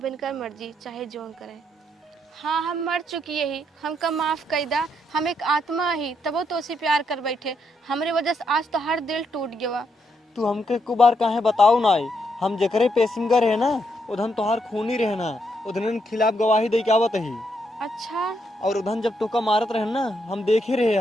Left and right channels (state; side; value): normal; both; correlation 0.77